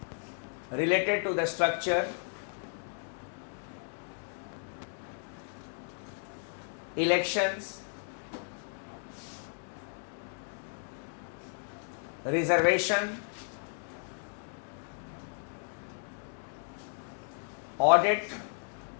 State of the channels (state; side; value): silent; right; 55 dB below the other